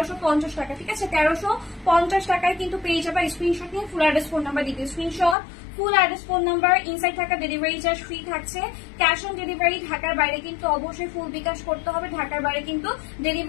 টাকা, ঠিক আছে। 1350 টাকায় কিন্তু পেয়ে যাবে। স্ক্রিনশট নিয়ে ফুল অ্যাড্রেস ফোন নাম্বার দিতে, screenshot full address phone number, inside থাকা ডেলিভারি চার্জ ফ্রি থাকছে। ক্যাশ অন ডেলিভারি ঢাকার বাইরে কিন্তু অবশ্যই ফুল বিকাশ করতে হবে, ঢাকার বাইরে কিন্তু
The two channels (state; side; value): drops out; right; at 5.4 s